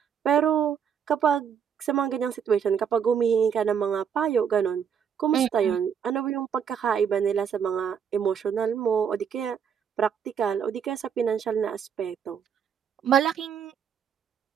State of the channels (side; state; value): left; quieter; 7.6 dB